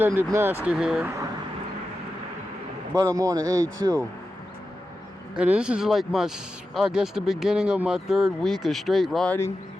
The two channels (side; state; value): both; normal; correlation 0.91